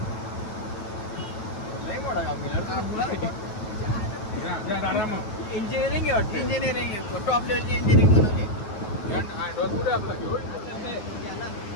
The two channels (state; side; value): late; right; 9.3 ms